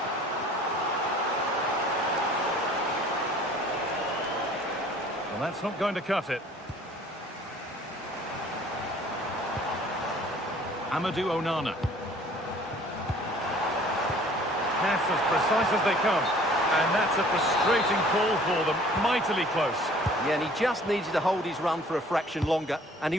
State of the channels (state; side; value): normal; both; correlation 0.52